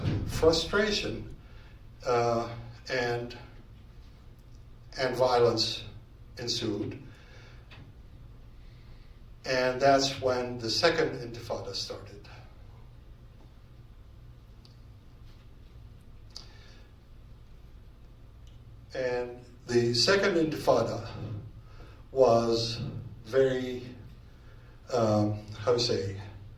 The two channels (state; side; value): identical; both; correlation 1.00